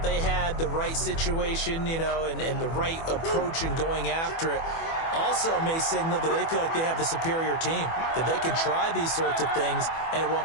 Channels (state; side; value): late; right; 24 ms